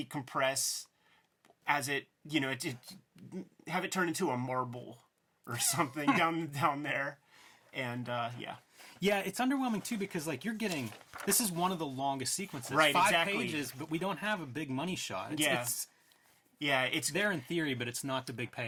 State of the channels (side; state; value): both; identical; correlation 1.00